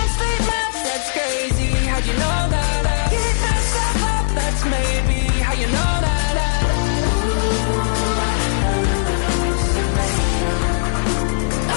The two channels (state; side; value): silent; right; digital silence